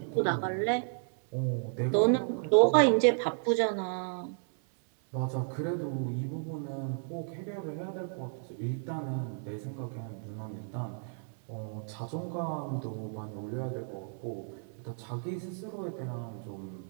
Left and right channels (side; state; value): left; silent; 56 dB below the other